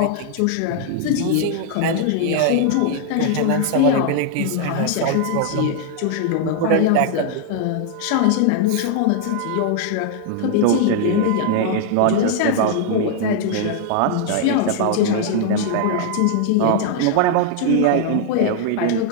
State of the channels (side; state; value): both; different; correlation 0.00